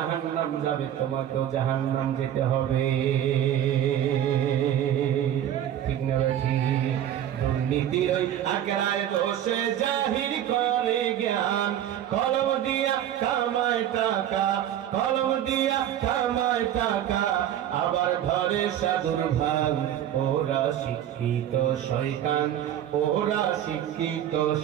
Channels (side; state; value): left; quieter; 10.9 dB